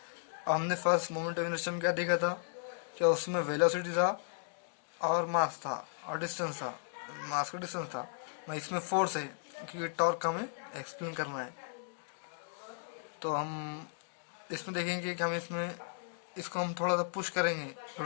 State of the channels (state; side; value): silent; right; digital silence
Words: अब हमने फर्स्ट मोमेंट ऑफ इनर्शिया में क्या देखा था कि उसमें वेलोसिटी था और मास था और डिस्टेंस था, मास का डिस्टेंस था. मैं इसमें फोर्स है क्योंकि टॉर्क हमें एक्सप्लेन करना है. तो हम इसमें देखेंगे कि हम इसमें इसको हम थोड़ा सा पुश करेंगे